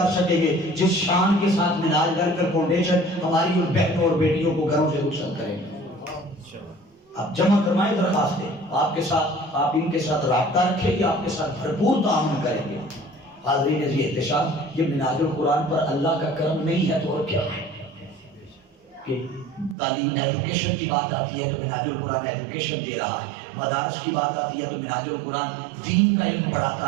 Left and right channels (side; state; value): left; drops out; at 19.8 s